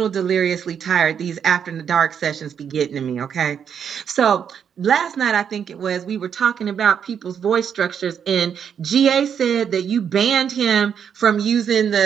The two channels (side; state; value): left; quieter; 7.8 dB